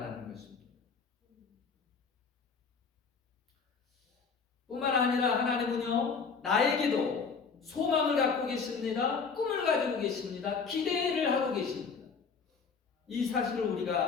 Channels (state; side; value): quieter; right; 5.4 dB